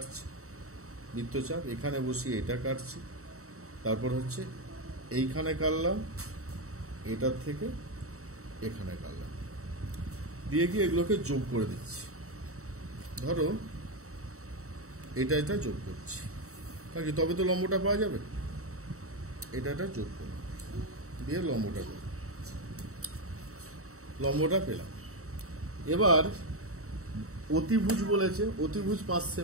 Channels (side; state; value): left; late; 0.64 ms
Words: বৃত্তচাপ, এখানে বসিয়ে এটা কাটছি, তারপর হচ্ছে এইখানে কাটলাম, এটার থেকে এখানে কাটলাম, দিয়ে গিয়ে এগুলোকে যোগ করে দিচ্ছি। ধরো এটা যোগ করছি, কারণ তবে তো লম্বটা পাওয়া যাবে। এটা যোগ করব, দিয়ে লম্বটা করব, লম্বটা পেলাম। এবার অতিভুজ বলেছে, অতিভুজ 5